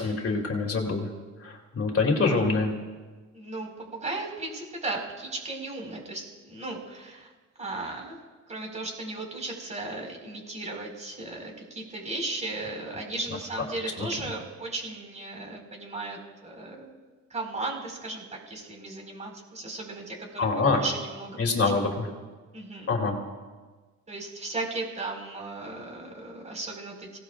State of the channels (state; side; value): normal; both; correlation 0.22